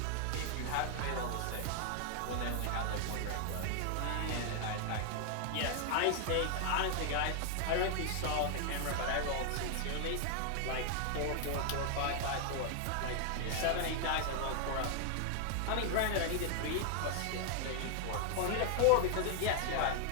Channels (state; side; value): different; both; correlation 0.00